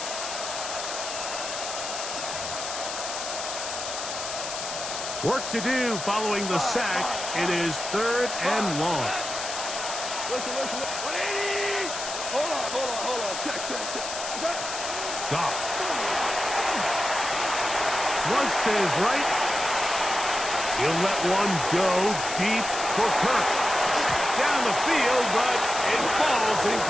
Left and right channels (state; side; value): noise; left; hiss, 6 dB below the sound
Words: Work to do following the sack. It is third and long. Listen. 180. Hold on. Check. Goff. Flush to his right. He'll let one go deep for Kirk. Down the field, but it falls